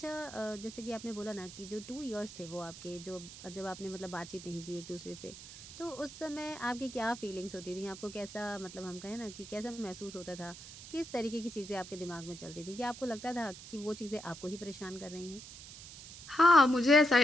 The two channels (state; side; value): noise; right; hiss, 14 dB below the sound